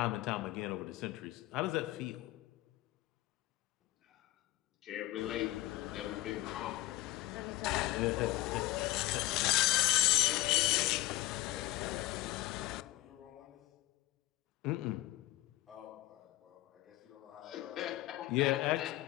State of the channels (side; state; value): right; quieter; 17.7 dB